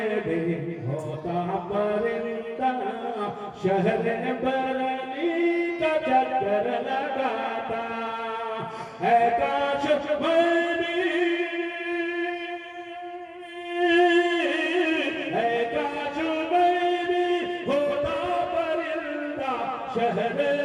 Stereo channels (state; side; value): identical; both; correlation 1.00